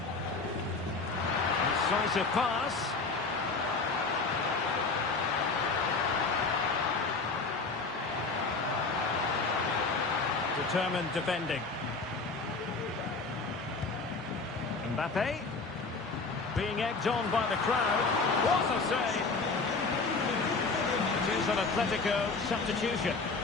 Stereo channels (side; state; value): right; quieter; 4.0 dB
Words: Incisive pass. Determined defending. Mbappe. Being egged on by the crowd. What a save! It is an Atletico substitution.